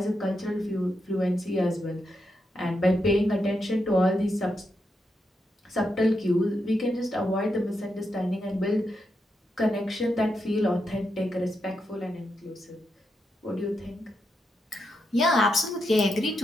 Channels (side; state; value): both; normal; correlation 0.84